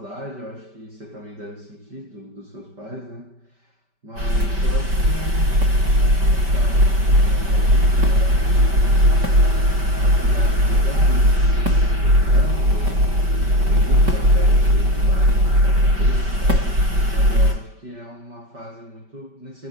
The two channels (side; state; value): left; late; 5.1 ms